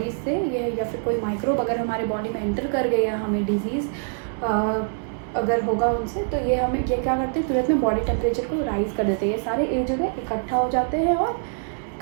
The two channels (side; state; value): left; silent; digital silence